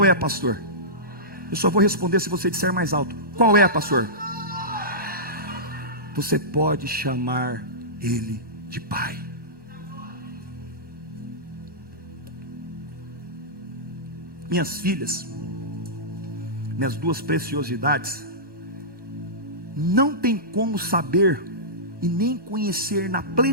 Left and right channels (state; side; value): late; left; 1.1 ms